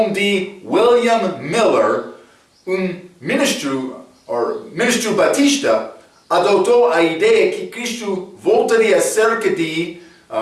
de William Miller, um ministro batista, adotou a ideia que Cristo voltaria cerca de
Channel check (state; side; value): identical; both; correlation 1.00